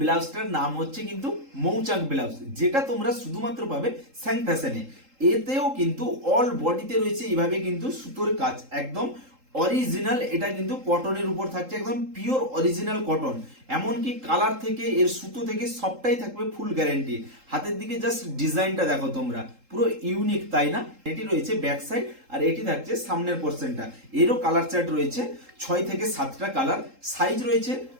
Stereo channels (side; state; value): left; late; 3.8 ms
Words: ব্লাউজটার নাম হচ্ছে কিন্তু মৌচাক ব্লাউজ, যেটা তোমরা শুধুমাত্র পাবে স্যাং ফ্যাশনে। এতেও কিন্তু অল বডিতে রয়েছে এইভাবে কিন্তু সুতোর কাজ, একদম অরিজিনাল। এটা কিন্তু কটনের উপর থাকছে, একদম পিওর অরিজিনাল কটন। এমনকি কালার থেকে এর সুতো থেকে সবটাই থাকবে ফুল গ্যারেন্টি। হাতের দিকে জাস্ট ডিজাইনটা দেখো তোমরা, পুরো ইউনিক, তাই না? এটি রয়েছে ব্যাক সাইড, আর এটি থাকছে সামনের পোর্শনটা। এরও কালার চার্ট রয়েছে 6 থেকে 7টা কালার। সাইজ রয়েছে